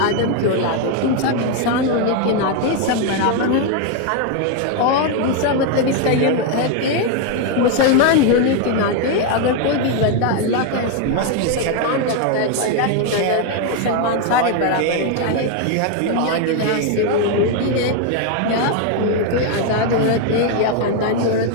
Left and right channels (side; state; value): both; different; correlation 0.01